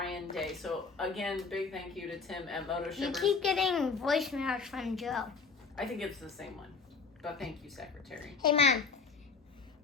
Day. So again, big thank you to Tim at Moto You Shippers. keep getting voicemails from Joe. I think it's the same one, but thank you, Secretary. Hey, Mom.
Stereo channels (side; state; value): right; quieter; 5.0 dB